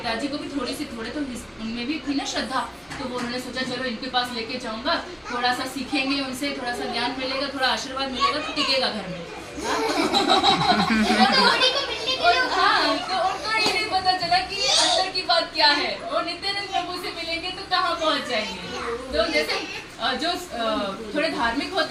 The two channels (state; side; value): identical; both; correlation 1.00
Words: को भी थोड़े तो उनमें भी थी ना श्रद्धा, तो वो उन्होंने सोचा चलो इनके पास लेके जाऊंगा, थोड़ा सा सीखेंगे उनसे, थोड़ा सा ज्ञान मिलेगा, थोड़ा आशीर्वाद मिलेगा, तो टिकेगा घर में। हाँ, तो उनको ये नहीं पता चला कि अंदर की बात क्या है, वो नित्यानंद प्रभु से मिलेंगे तो कहाँ पहुँच जाएंगे। तो जैसे जो थोड़े धार्मिक